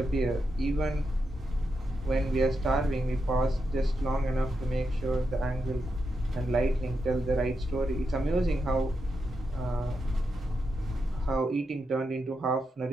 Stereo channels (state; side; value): normal; both; correlation 0.85